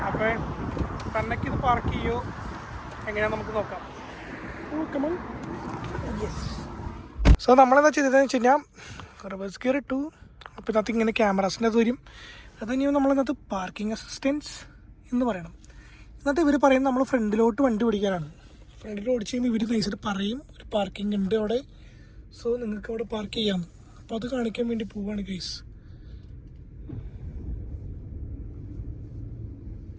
അപ്പോൾ തന്നേക്ക് ഇത് പാർക്ക് ചെയ്യുമോ എങ്ങനെയാണെന്ന് നമുക്ക് നോക്കാം. യെസ്. സോ നമ്മളെന്താ ചെയ്തതെന്ന് വെച്ച് കഴിഞ്ഞാൽ റിവേഴ്സ് ഗിയർ ഇട്ടു. അപ്പോൾ ഇതിനകത്ത് ഇങ്ങനെ ക്യാമറാസിൻ്റെ അത് വരും. അത് കഴിഞ്ഞാൽ നമ്മളിന്നകത്ത് പാർക്കിംഗ് അസിസ്റ്റൻസ് എന്ന് പറയണം. എന്നിട്ട് ഇവർ പറയുന്നത് നമ്മൾ ഫ്രണ്ടിലോട്ട് വണ്ടി ഓടിക്കാനാണ്. ഫ്രണ്ടിൽ ഓടിച്ച് കഴിയുമ്പോൾ ഇവർ നൈസായിട്ട് പറയും ഒരു പാർക്കിംഗ് ഉണ്ട് അവിടെ, സോ നിങ്ങൾക്ക് അവിടെ പാർക്ക് ചെയ്യാം. അപ്പോൾ അത് കാണിക്കാൻ വേണ്ടി പോവാണ് ഗൈസ്.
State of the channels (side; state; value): both; identical; correlation 1.00